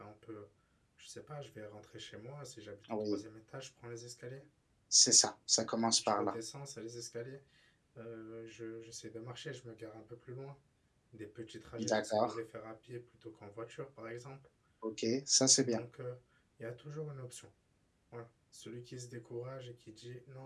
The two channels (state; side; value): identical; both; correlation 1.00